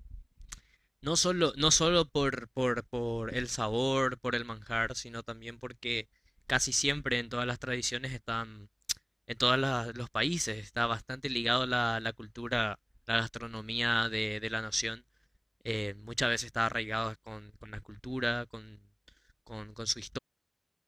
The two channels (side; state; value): both; identical; correlation 1.00